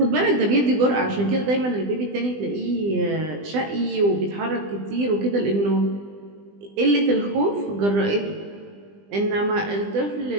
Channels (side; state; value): left; late; 20 ms